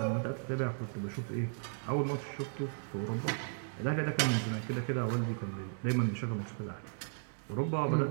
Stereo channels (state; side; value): silent; left; digital silence